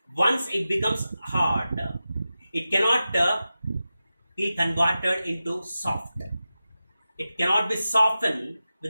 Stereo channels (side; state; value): both; inverted; correlation -0.93